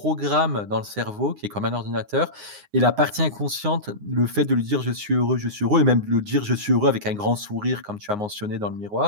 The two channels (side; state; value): left; late; 9.6 ms